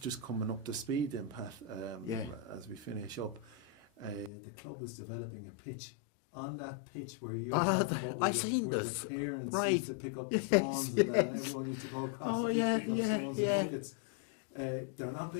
coming up to speed then, Pat, as we finish up, the club is developing a pitch. On that pitch where you were talking about where the parents used to pick up the stones and then everyone used to go across the pitch picking up stones in buckets. They're not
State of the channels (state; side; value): drops out; right; at 4.3 s